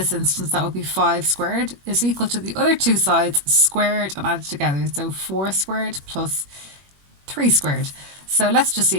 instance that would be 5 squared, is equal to the other two sides squared and added together. So 4 squared plus 3 squared. So let's just see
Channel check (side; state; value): left; late; 21 ms